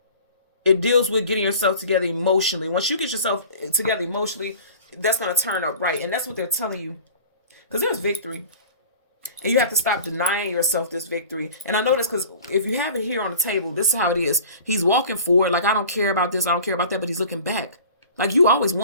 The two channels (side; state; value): both; inverted; correlation -0.42